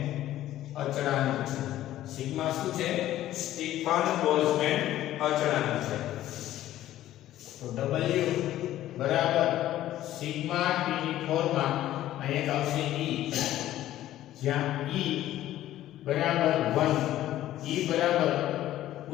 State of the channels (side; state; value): right; quieter; 13.6 dB